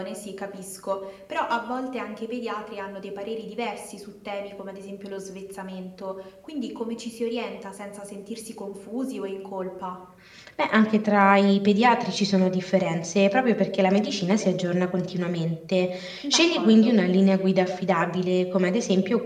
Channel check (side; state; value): both; identical; correlation 1.00